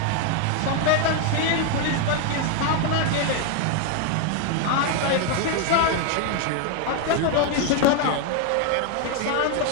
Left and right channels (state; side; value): different; both; correlation 0.01